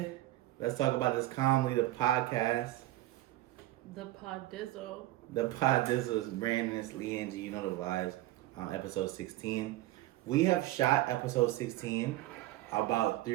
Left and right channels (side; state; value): left; quieter; 16.2 dB